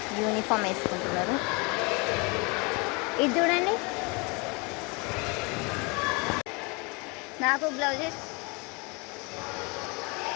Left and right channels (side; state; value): right; quieter; 29.3 dB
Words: యూనిఫామ్ వేసుకుంటున్నారు. ఇది చూడండి, నాకు blouses